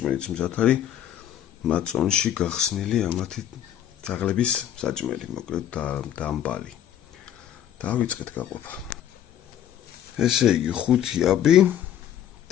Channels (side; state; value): right; quieter; 10.5 dB